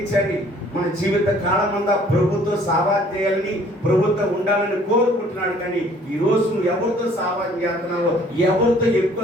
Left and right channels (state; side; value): normal; both; correlation 0.57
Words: మన జీవిత కాలం అంతా ప్రభుత్వం సావాసం చేయాలని, ప్రభుత్వం ఉండాలని కోరుకుంటున్నాడు. కానీ ఈరోజు నువ్వు ఎవరితో సావాసం చేస్తున్నావో, ఎవరితో